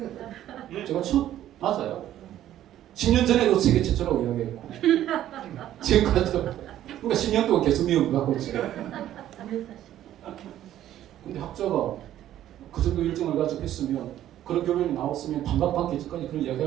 제가 맞아요. 10년 전에도 세계 최초라고 이야기했고 지금까지도 그러니까 10년 동안 계속 미움을 받고 있어요. 근데 학자가 그 정도 일정을 가지고 했으면 그런 결론이 나왔으면 반박받기 전까지 그런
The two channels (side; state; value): left; quieter; 12.3 dB